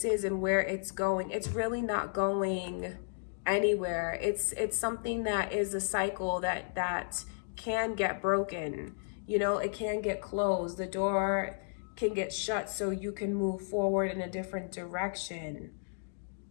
is and where it's going. It's really not going anywhere. It's something that is a cycle that can get broken. You know, it can get closed. The door can get shut so you can move forward in a different direction.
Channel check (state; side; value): silent; right; digital silence